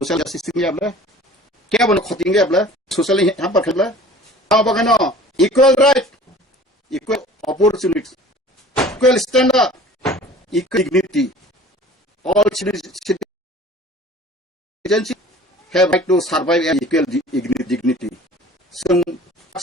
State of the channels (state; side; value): normal; both; correlation 0.46